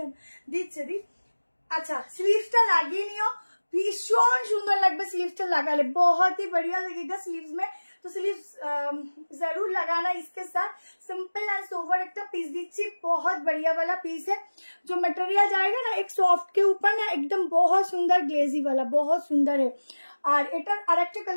দিচ্ছে দি। আচ্ছা স্লিভসটা লাগিয়ে নিও, ভীষণ সুন্দর লাগবে স্লিভসটা লাগালে, बहुत ही बढ़िया लगेगा स्लीव्स में। तो स्लीव जरूर लगाना इसके साथ। सिंपल एंड सोवर एक पीस दीची, बहुत बढ़िया वाला पीस है। जो मटेरियल जाएगा ना एक सॉफ्ट के ऊपर ना एकदम बहुत सुंदर ग्लेजी वाला, बहुत सुंदर है। और एटार आरेकटा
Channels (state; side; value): inverted; both; correlation -1.00